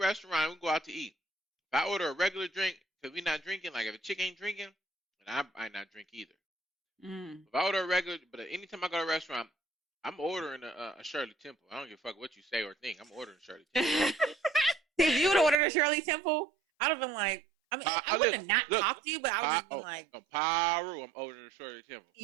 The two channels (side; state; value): left; drops out; at 15.6 s